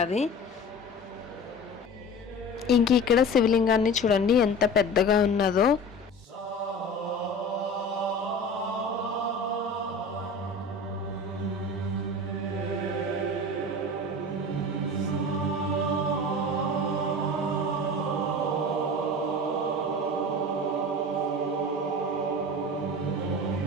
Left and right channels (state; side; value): normal; both; correlation 0.36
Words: ఇంక ఇక్కడ శివలింగాన్ని చూడండి ఎంత పెద్దగా ఉన్నదో.